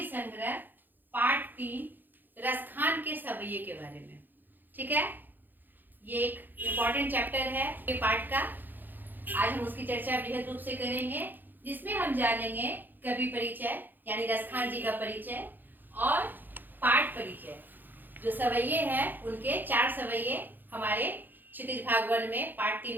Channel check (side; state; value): left; late; 0.089 ms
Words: संग्रह पाठ 3 रसखान के सवैये के बारे में। ठीक है, ये एक इम्पॉर्टेंट चैप्टर है ये पाठ का। आज हम उसकी चर्चा बृहद रूप से करेंगे, जिसमें हम जानेंगे कवि परिचय यानी रसखान जी का परिचय और पाठ परिचय। जो सवैये हैं उनके 4 सवैये हमारे क्षितिज भाग 1 में पाठ